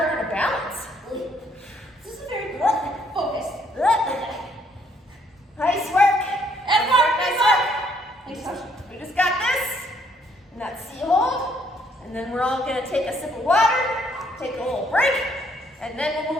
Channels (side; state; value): both; normal; correlation 0.67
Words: to balance. This is very focused. Nice work. And Nice work. Thanks, Coach. We just got this, and that sea hold, and then we're all gonna take a sip of water, take a little break, and then we'll